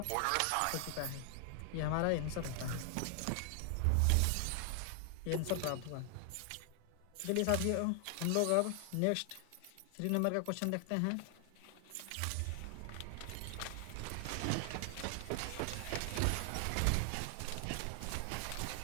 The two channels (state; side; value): different; both; correlation 0.00